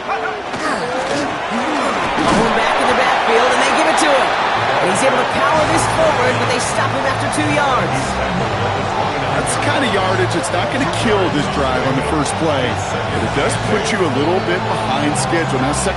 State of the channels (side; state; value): both; identical; correlation 1.00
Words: Mahomes back in the backfield, and they give it to him. And he's able to power this forward, but they stop him after 2 yards. That's the kind of yardage that's not going to kill this drive on the first play, but it does put you a little bit behind schedule. Now,